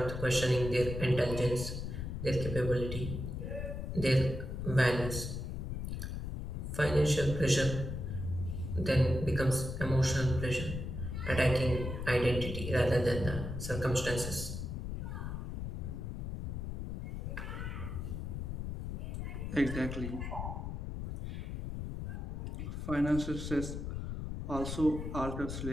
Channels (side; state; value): left; noise; rumble, 5 dB below the sound